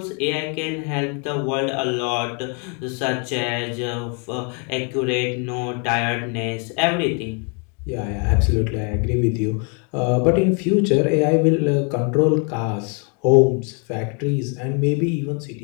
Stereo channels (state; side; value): quieter; right; 37.2 dB